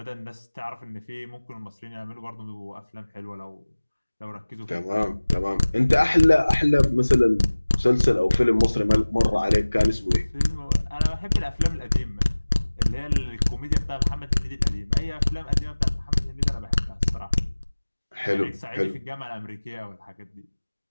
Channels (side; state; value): both; inverted; correlation -1.00